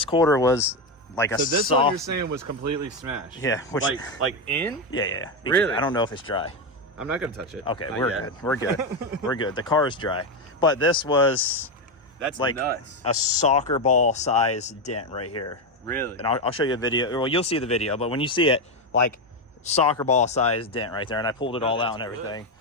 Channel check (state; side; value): normal; both; correlation 0.10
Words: quarter was like a So this one you're soft. saying was completely smashed. Yeah, which, like in? yeah. Really? I don't know if it's dry. I'm not gonna touch it. Okay, Not we're yet. good. We're good. We're good. The car is dry, but this was That's like nuts. a soccer ball size dent right here. Really? And I'll show you a video. Well, you'll see the video, but when you see it, like, soccer ball size dent right there, and I pulled it all out and that's everything.